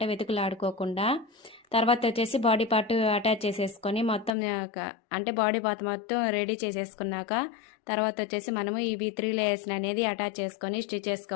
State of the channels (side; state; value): right; drops out; at 4.3 s